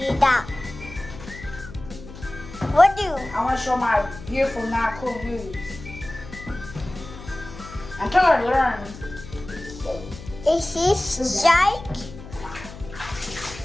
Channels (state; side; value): noise; left; hum, 15 dB below the sound